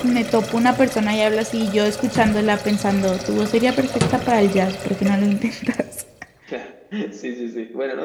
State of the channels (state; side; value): identical; both; correlation 1.00